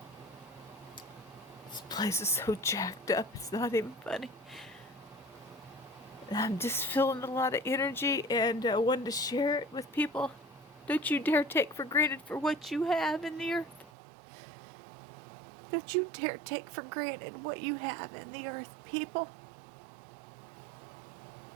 This place is so jacked up, it's not even funny. I'm just feeling a lot of energy, and I wanted to share it with people. Don't you dare take for granted for what you have in the earth. Don't you dare take for granted what you have in the earth, people.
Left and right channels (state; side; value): drops out; left; at 13.9 s